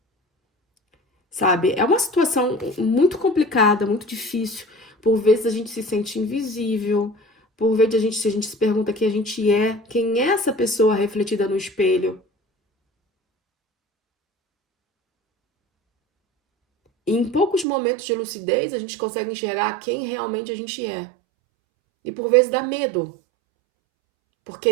Sabe? É uma situação muito complicada, muito difícil. Por vezes a gente se sente invisível, por vezes a gente se pergunta quem a gente é, quem é essa pessoa refletida no espelho. E em poucos momentos de lucidez a gente consegue enxergar quem realmente a gente é. E por vezes dá medo, porque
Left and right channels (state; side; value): drops out; left; at 17.7 s